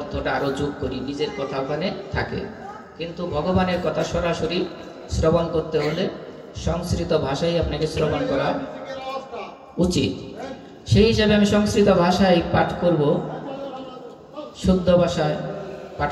আরো যোগ করি, নিজের কথা ওখানে থাকে। কিন্তু ভগবানের কথা সরাসরি শ্রবণ করতে হলে সংস্কৃত ভাষায় আপনাকে শ্রবণ করা উচিত। সেই হিসাবে আমি সংস্কৃত ভাষায় পাঠ করব, শুদ্ধ ভাষায় পাঠ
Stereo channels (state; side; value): identical; both; correlation 1.00